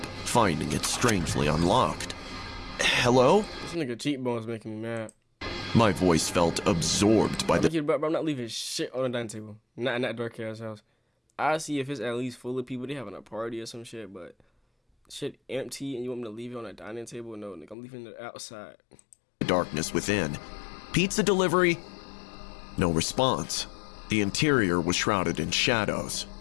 finding it strangely unlocked. Hello? This nigga cheekbones making me mad. My voice felt absorbed by the... Bro, I'm not leaving shit on the dining table. Not in that dark ass house. I see if it's at least full of people, they having a party or some shit, but shit empty and you want me to leave it on the dining table? No, nigga, I'm leaving it outside. Darkness within. Pizza delivery? No response. The interior was shrouded in shadows,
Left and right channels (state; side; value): drops out; right; at 17.8 s